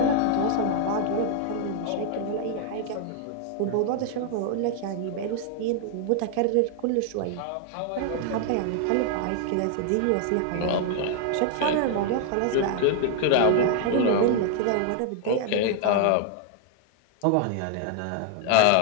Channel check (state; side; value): different; both; correlation 0.00